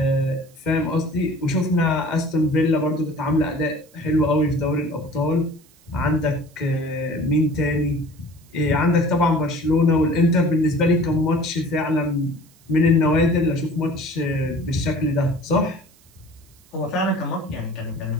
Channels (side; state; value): right; noise; hiss, 29 dB below the sound